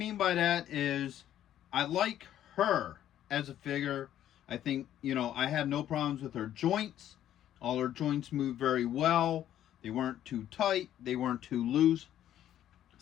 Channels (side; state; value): right; quieter; 11.5 dB